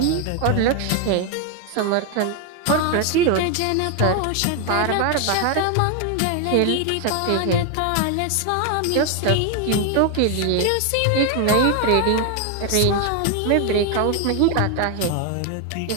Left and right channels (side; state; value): both; different; correlation 0.01